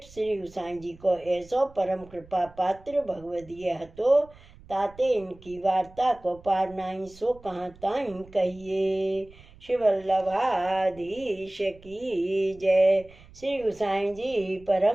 श्री गोसाई जी को ऐसो परम कृपा पात्र भगवदीय हतो, ताते इनकी वार्ता को पार नाई सो कहाँ ताई कहिए। श्री वल्लभाधीश की जय, श्री गोसाई जी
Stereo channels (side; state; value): right; noise; rumble, 23 dB below the sound